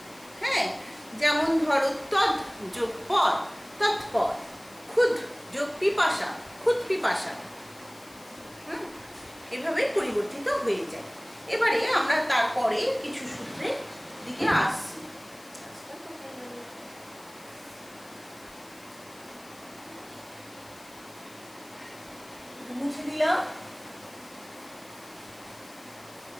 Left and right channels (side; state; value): left; noise; hiss, 23 dB below the sound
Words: হ্যাঁ, যেমন ধরো তদ যোগ পদ, তৎপদ। ক্ষুদ যোগ পিপাসা, ক্ষুদ পিপাসা। এভাবে পরিবর্তিত হয়ে যায়। এবারে আমরা তারপরে কিছু সূত্রের দিকে আসছি। মুছে দিলাম।